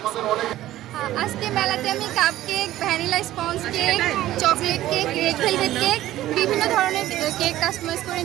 আজকে মেলাতে আমি cup cake, vanilla sponge cake, chocolate cake, red velvet cake, বিভিন্ন ধরনের কেক কাস্টমাইজ করে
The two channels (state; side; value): quieter; left; 14.4 dB